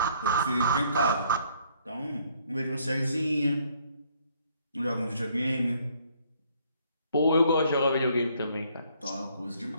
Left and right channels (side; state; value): both; inverted; correlation -0.65